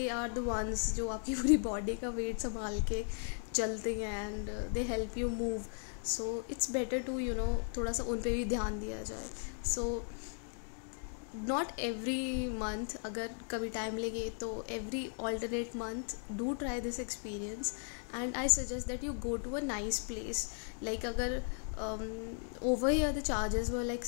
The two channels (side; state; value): right; silent; 53 dB below the other